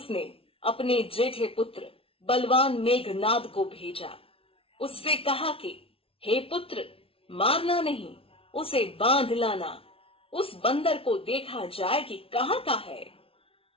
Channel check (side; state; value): right; late; 0.26 ms